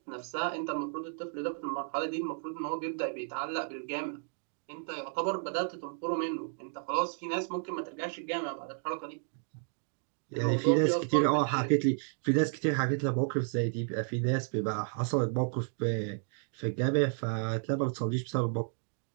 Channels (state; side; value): silent; left; 56 dB below the other